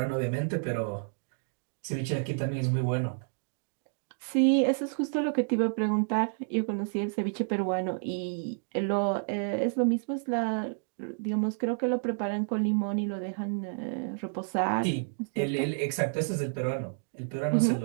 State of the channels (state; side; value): silent; left; digital silence